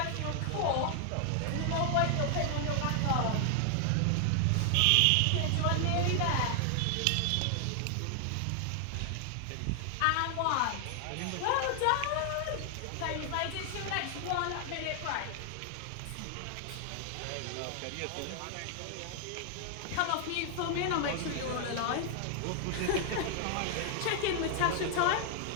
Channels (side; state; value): both; different; correlation 0.00